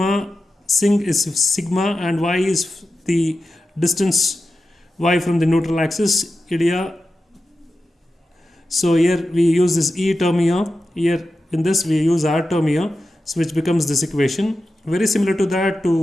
sing is sigma, and y is the distance y from the neutral axis, Ilya. So here we use this E term here, in this we use R term here, so which becomes this equation. Very similar to that,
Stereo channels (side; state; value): both; normal; correlation 0.91